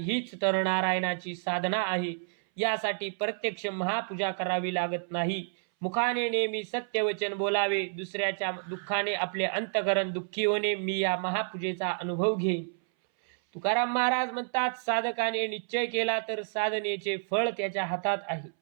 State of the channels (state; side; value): silent; left; 58 dB below the other